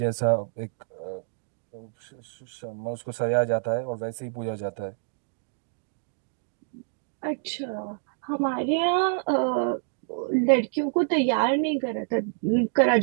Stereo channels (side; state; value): left; silent; digital silence